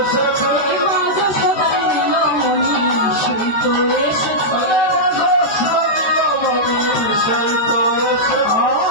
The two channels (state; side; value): late; right; 13 ms